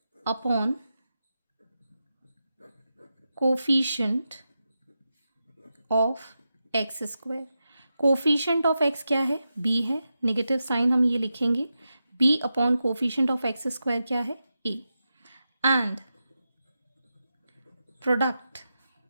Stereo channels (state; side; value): inverted; both; correlation -0.89